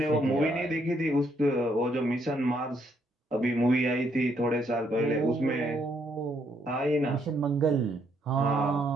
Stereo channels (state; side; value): normal; both; correlation 0.72